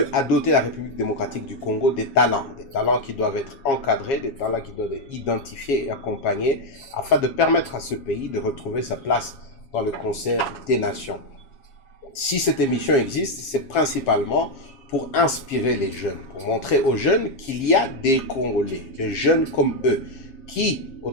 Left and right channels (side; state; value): right; late; 7.3 ms